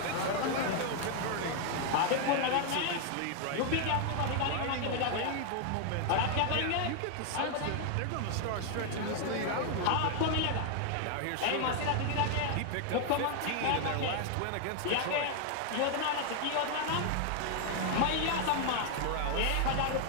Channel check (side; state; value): both; different; correlation 0.00